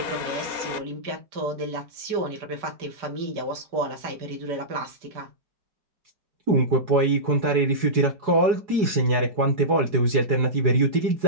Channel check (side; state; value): left; late; 4.7 ms